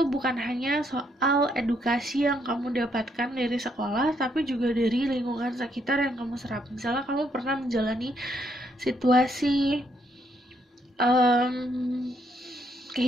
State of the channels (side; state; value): both; normal; correlation 0.73